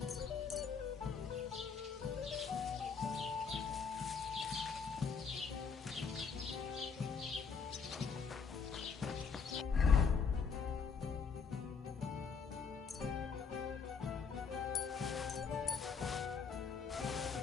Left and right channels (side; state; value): right; quieter; 5.7 dB